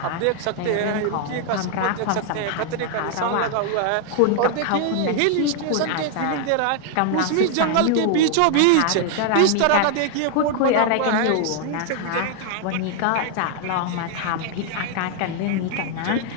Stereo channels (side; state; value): both; different; correlation 0.00